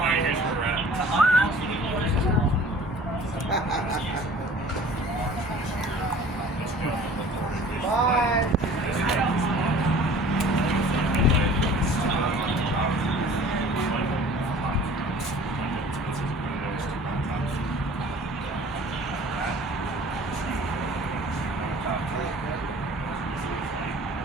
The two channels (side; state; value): both; normal; correlation 0.47